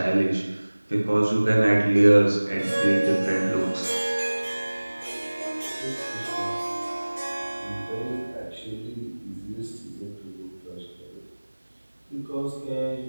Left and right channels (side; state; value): both; inverted; correlation -1.00